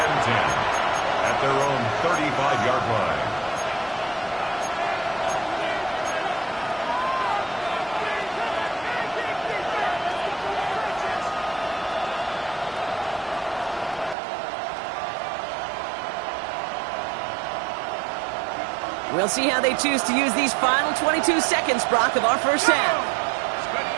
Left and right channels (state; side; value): drops out; left; at 14.2 s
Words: 10 at their own 35-yard line. We'll see how they choose to use these final 22 seconds, Brock, of our first half.